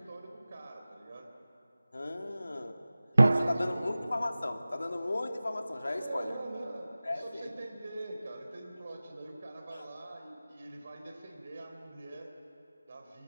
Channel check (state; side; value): inverted; both; correlation -0.97